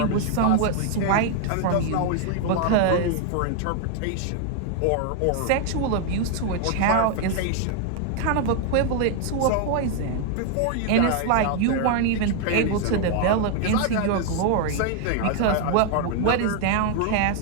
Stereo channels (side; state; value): both; different; correlation 0.00